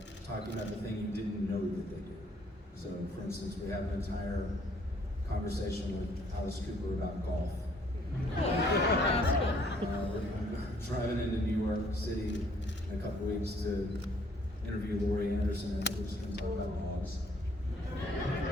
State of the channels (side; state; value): both; normal; correlation 0.63